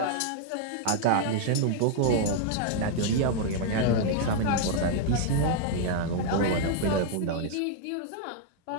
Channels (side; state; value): both; different; correlation 0.00